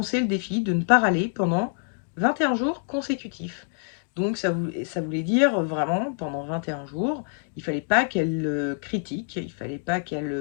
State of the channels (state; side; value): silent; right; 61 dB below the other